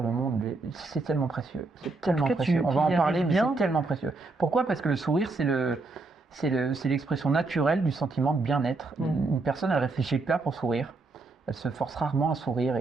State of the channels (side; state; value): left; quieter; 3.6 dB